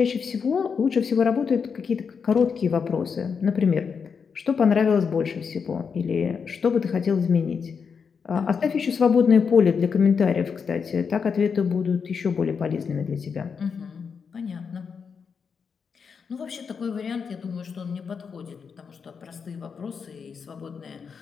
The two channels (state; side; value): quieter; right; 6.0 dB